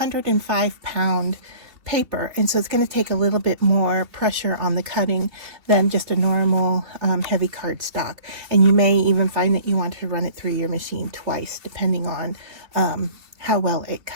paper, and so it's going to take a little bit more pressure on the cutting than just a normal heavy cardstock, and you may even find that you want to run it through your machine twice depending on how well it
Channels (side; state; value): left; late; 2.7 ms